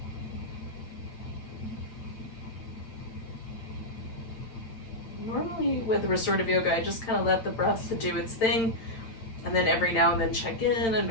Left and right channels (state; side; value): late; right; 8.9 ms